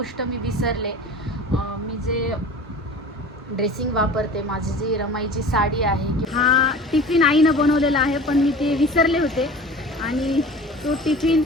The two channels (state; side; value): normal; both; correlation 0.39